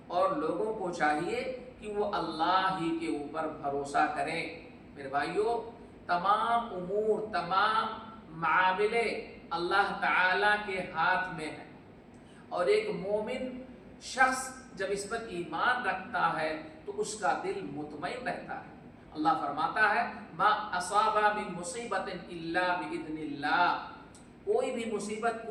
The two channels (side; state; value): both; identical; correlation 1.00